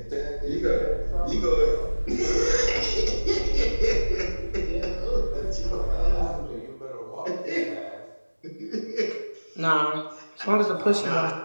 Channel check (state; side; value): inverted; both; correlation -1.00